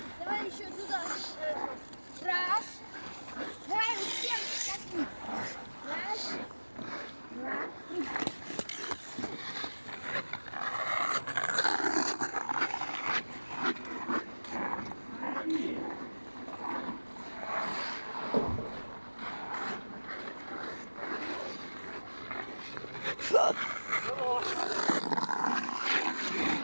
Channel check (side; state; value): both; inverted; correlation -1.00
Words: Давай еще туда. Раз. Давай всем. Раз. Два. Три.